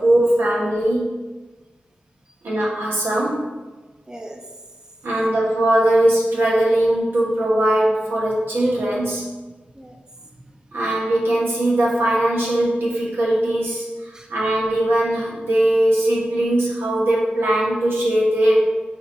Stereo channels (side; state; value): both; normal; correlation 0.92